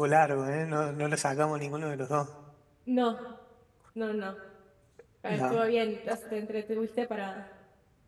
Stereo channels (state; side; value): identical; both; correlation 1.00